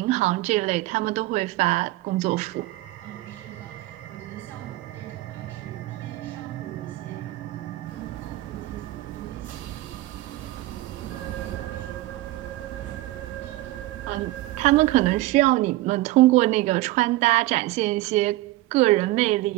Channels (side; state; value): left; quieter; 17.8 dB